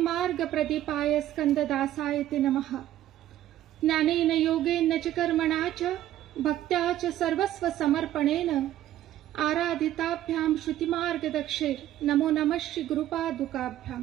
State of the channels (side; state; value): left; quieter; 13.0 dB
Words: प्रदीपाय स्कंददासाय ते नमः. ज्ञानेन योगेन च कर्मणा च भक्त्या च सर्वस्व समर्पणेन आराधिताभ्याम श्रुतिमार्गदक्षेर नमो नमः श्री